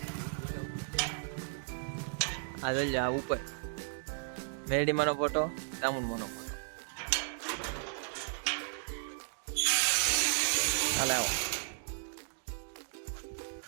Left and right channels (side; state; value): left; silent; digital silence